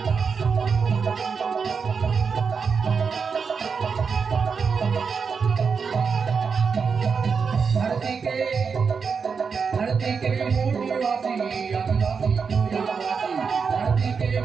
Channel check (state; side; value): quieter; left; 5.7 dB